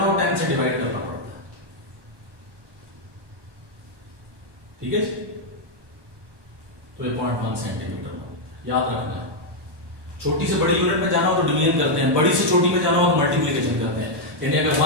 हो 10 से डिवाइड करना पड़ता है। ठीक है, तो 0.1 सेंटीमीटर याद रखना है। छोटी से बड़ी यूनिट में जाना हो तो डिवीजन करते हैं, बड़ी से छोटी में जाना हो तो मल्टीप्लिकेशन करते हैं। यानी अगर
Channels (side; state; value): left; late; 1.2 ms